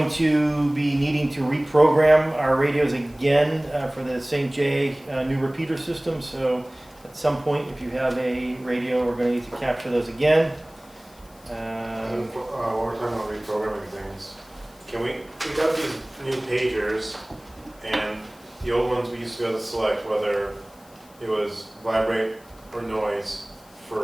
to be needing to reprogram our radios again for the St. J new repeater system. So at some point, if you have a radio, we're going to need to capture those again. While we're talking about reprogramming things, we got these new pagers, and the old ones we used to be able to select whether it was vibrate or noise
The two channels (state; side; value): noise; left; hiss, 27 dB below the sound